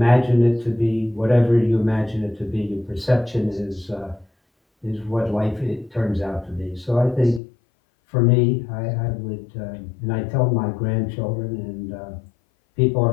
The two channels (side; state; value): right; drops out; at 7.4 s